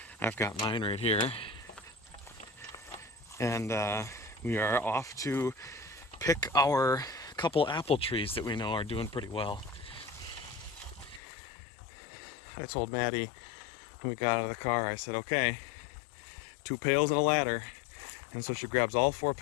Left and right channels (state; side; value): drops out; right; at 11.2 s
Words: I've got mine right here. And we are off to pick our couple apple trees that we know are doing pretty well. I told Maddie when we got out of the car, I said, okay, 2 pails and a ladder. And so she grabs all 4